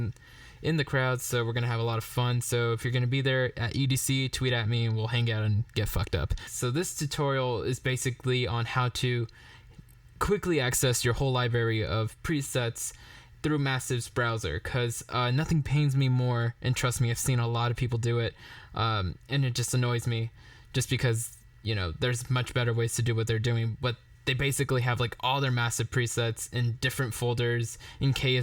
in the crowds, so we're gonna have a lot of fun. So if you're gonna be there at EDC, tweet at me and we'll hang out and get fucked up. So this tutorial is basically on how to quickly access your whole library of presets through Massive's browser, because nothing pains me more, and trust me, I've seen a lot of people do it, and it just annoys me just because, you know, there's much better ways to do what they're doing, but they basically have like all their Massive presets in different folders in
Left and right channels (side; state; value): both; identical; correlation 1.00